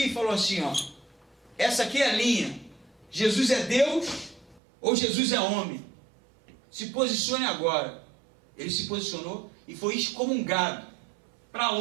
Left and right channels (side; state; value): left; drops out; at 4.6 s